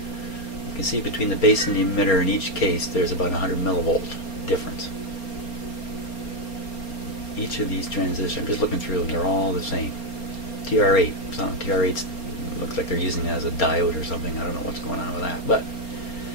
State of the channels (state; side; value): late; right; 4.3 ms